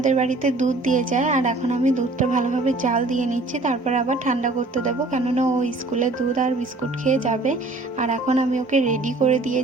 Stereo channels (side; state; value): left; quieter; 3.1 dB